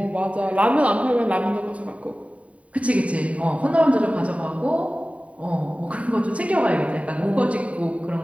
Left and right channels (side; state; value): left; late; 0.066 ms